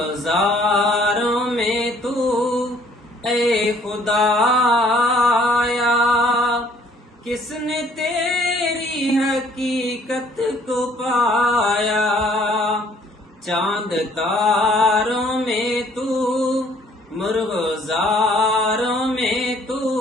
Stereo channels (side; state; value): both; normal; correlation 0.60